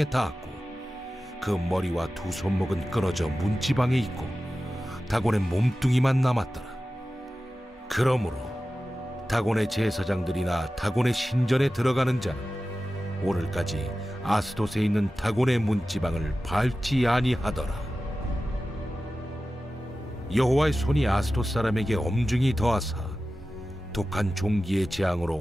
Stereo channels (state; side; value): normal; both; correlation 0.95